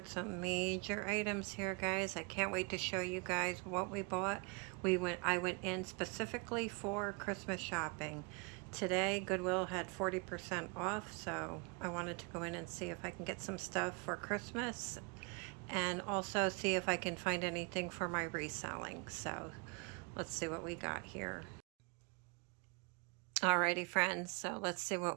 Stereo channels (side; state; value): left; quieter; 31.5 dB